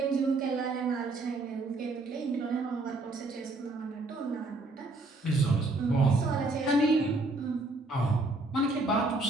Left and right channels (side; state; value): left; quieter; 3.1 dB